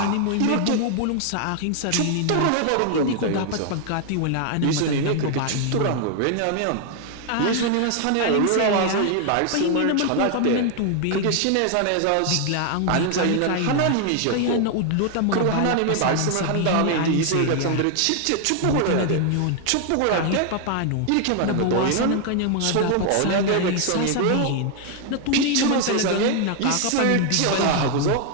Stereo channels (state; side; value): different; both; correlation 0.00